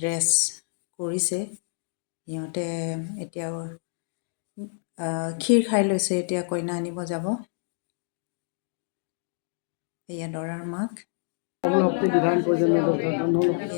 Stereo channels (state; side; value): silent; right; digital silence